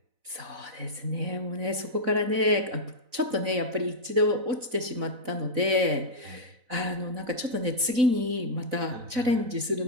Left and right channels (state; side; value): late; left; 4.0 ms